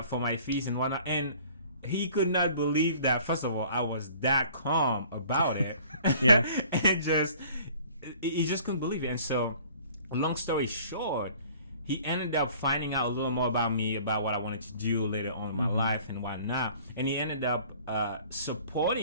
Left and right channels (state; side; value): inverted; both; correlation -0.51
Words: for my fees and whatnot. And he could not believe that, first of all, I was that calm about it. And he just couldn't believe it. And so, long story short, he ended up finding out a little more about me, about what I wanted to do later on in my life and whatnot. And he ended up